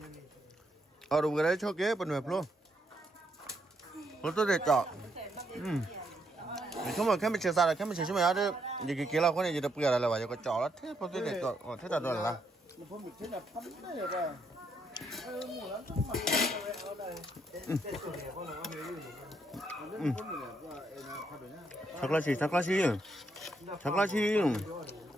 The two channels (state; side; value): normal; both; correlation 0.76